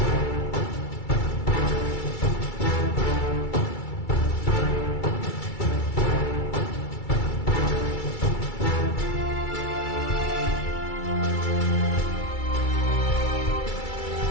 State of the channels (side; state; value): right; late; 2.3 ms